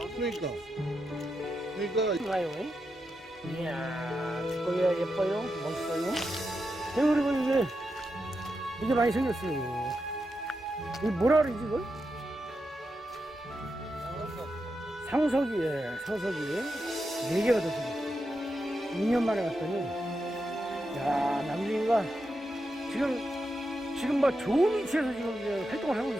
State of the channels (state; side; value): normal; both; correlation 0.87